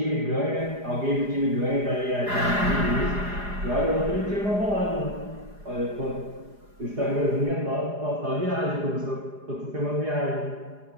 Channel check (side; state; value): left; late; 4.9 ms